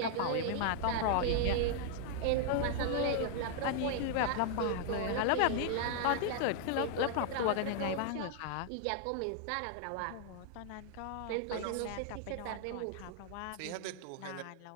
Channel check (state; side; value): different; both; correlation -0.01